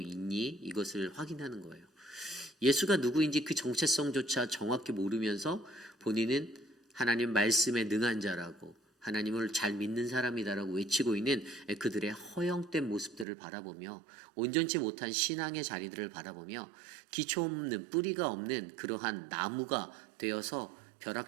이것을 확인하는 거예요. 예수가 누구인지 그 정체성조차 정확히 모르면서 본인은 하나님 말씀에 능한 자라고 하나님을 잘 믿는 사람이다라고 외치고 있는 그들의 허영된 모습들을 바라보며 온전치 못한 신앙의 자리들을 바라보며 기초 없는, 뿌리가 없는 그러한 나무가 되어서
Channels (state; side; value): drops out; left; at 13.2 s